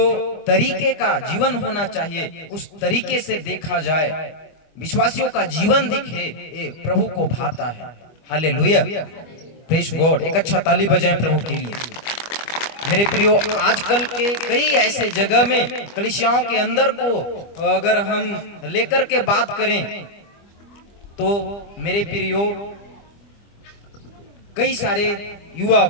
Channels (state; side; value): late; right; 25 ms